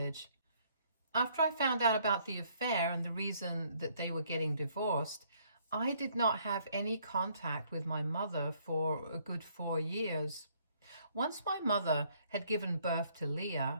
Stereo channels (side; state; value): both; inverted; correlation -0.65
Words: After I found out about the affair and the reason that they were getting divorced, I did not have any contact with my mother for a good 4 years. Once my mother had given birth to